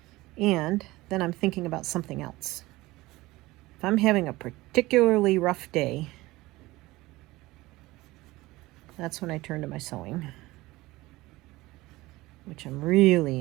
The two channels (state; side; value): quieter; left; 19.4 dB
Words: And then I'm thinking about something else. If I'm having a particularly rough day, that's when I turn to my sewing, which I'm